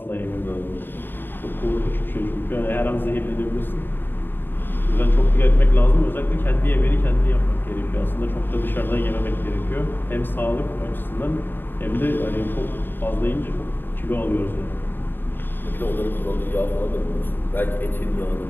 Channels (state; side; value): late; right; 0.096 ms